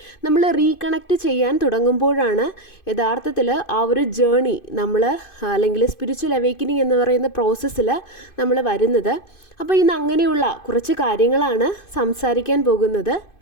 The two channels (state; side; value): late; right; 2.5 ms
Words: നമ്മൾ റീകണക്റ്റ് ചെയ്യാൻ തുടങ്ങുമ്പോഴാണ് യഥാർത്ഥത്തിൽ ആ ഒരു ജേർണി നമ്മൾ അല്ലെങ്കിൽ സ്പിരിച്വൽ അവേക്കനിങ് എന്ന് പറയുന്ന പ്രോസസ്സിൽ നമ്മൾ വരുന്നത്. അപ്പോൾ ഇന്ന് അങ്ങനെയുള്ള കുറച്ച് കാര്യങ്ങളാണ് സംസാരിക്കാൻ പോകുന്നത്.